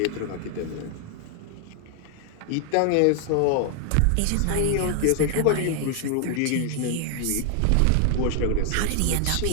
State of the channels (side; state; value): both; different; correlation 0.00